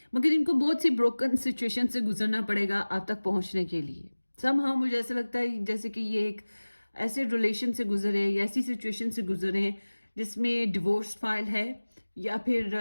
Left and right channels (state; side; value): inverted; both; correlation -1.00